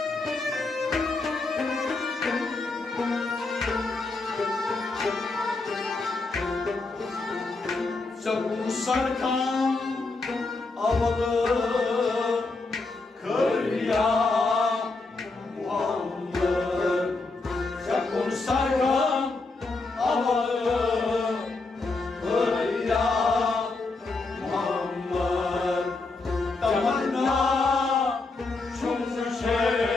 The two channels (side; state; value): right; quieter; 3.6 dB